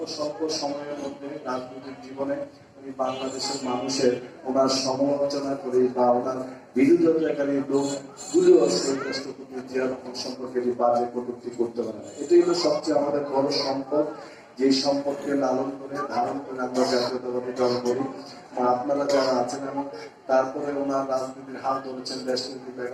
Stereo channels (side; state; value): both; identical; correlation 1.00